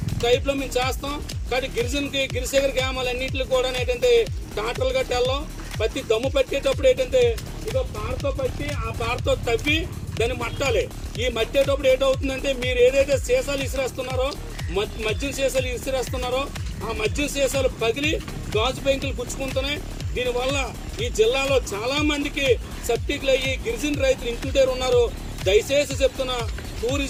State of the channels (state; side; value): identical; both; correlation 1.00